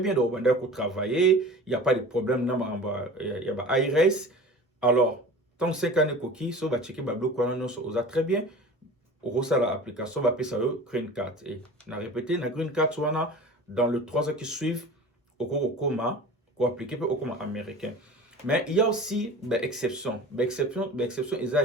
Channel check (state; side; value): normal; both; correlation 0.38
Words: donc on travailler, il n'y a pas de problème, il y a IRS. Alors, tant que 5 années coquille, ça va checker bablo quoi non ça a très bien. Au reçoit l'application va payer ça green card et on a répété la green card soit dans les 3 ans qui suivent au coma pour appliquer au coma américain. Mais il y a aussi des exceptions. Des exceptions, il y